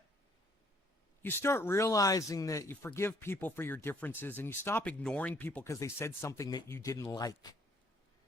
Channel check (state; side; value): normal; both; correlation 0.64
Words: You start realizing that you forgive people for your differences and you stop ignoring people because they said something that you didn't like.